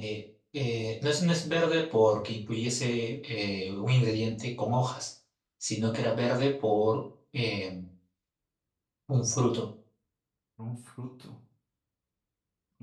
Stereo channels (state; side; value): identical; both; correlation 1.00